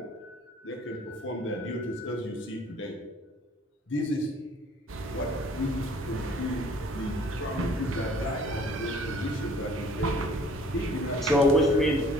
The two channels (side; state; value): both; normal; correlation 0.54